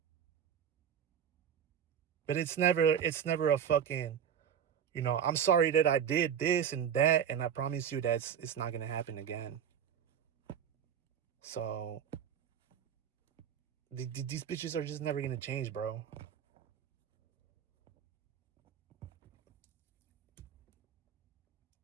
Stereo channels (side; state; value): left; quieter; 8.4 dB